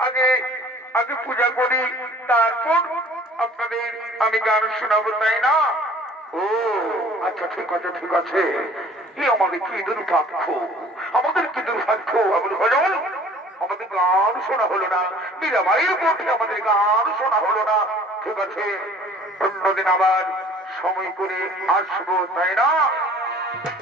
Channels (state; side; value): normal; both; correlation 0.51